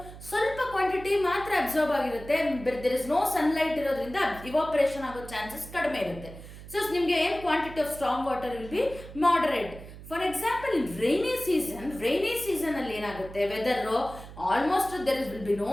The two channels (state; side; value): noise; right; hum, 15 dB below the sound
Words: ಸ್ವಲ್ಪ ಕ್ವಾಂಟಿಟಿ ಮಾತ್ರ ಅಬ್ಸರ್ವ್ ಆಗಿರುತ್ತೆ. ದೇರ್ ಇಸ್ ನೋ ಸನ್ಲೈಟ್ ಇರೋದ್ರಿಂದ ಇವಾಪರೇಷನ್ ಆಗೋ ಚಾನ್ಸಸ್ ಕಡಿಮೆ ಇರುತ್ತೆ. ಸೊ ನಿಮಗೆ ಏನು quantity of storm water will be moderate. For example in rainy season ಅಲ್ಲಿ ಏನಾಗುತ್ತೆ, weather almost there will be no